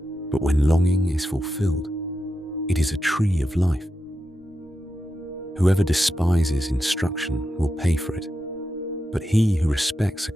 but when longing is fulfilled, it is a tree of life. Whoever despises instruction will pay for it, but he who respects a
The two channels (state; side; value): normal; both; correlation 0.88